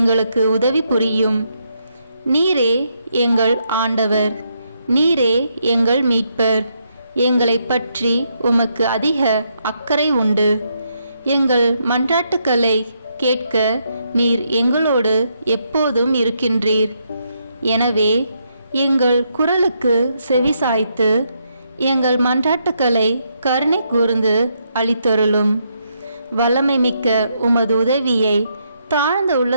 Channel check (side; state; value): both; inverted; correlation -0.77